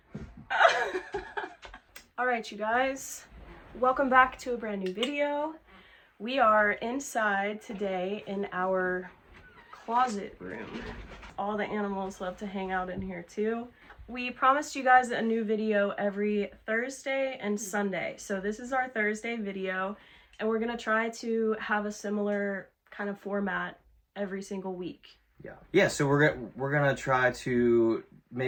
Alright, you guys. Welcome back to a brand new video. We are inside today in our closet room. All the animals love to hang out in here too. We promised you guys a new video every Thursday and Sunday. So this is our Thursday video, and we're gonna try to have a similar kind of format every single week. Yeah, so we're gonna try to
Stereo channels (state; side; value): identical; both; correlation 1.00